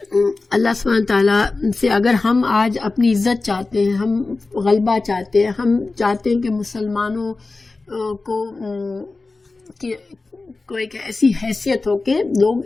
اللہ سبحانہ تعالیٰ سے اگر ہم آج اپنی عزت چاہتے ہیں، ہم غلبہ چاہتے ہیں، ہم چاہتے ہیں کہ مسلمانوں کو ایک ایسی حیثیت ہو کہ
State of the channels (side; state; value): right; quieter; 3.6 dB